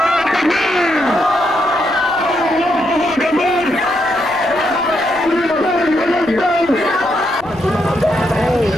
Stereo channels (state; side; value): noise; right; rumble, 21 dB below the sound